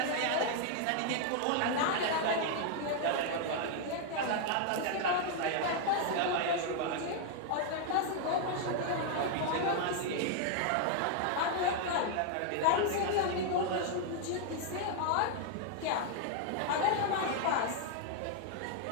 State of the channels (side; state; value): both; different; correlation 0.00